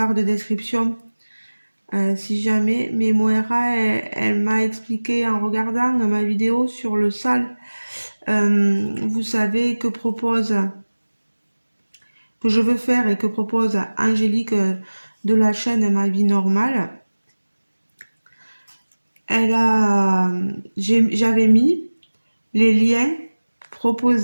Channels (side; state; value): both; inverted; correlation -1.00